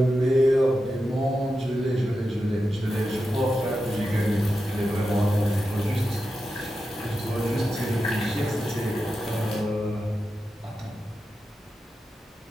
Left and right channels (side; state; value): both; normal; correlation 0.90